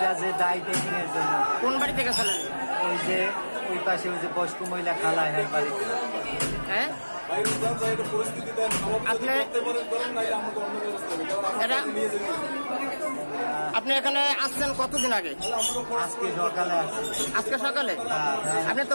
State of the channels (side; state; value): both; inverted; correlation -1.00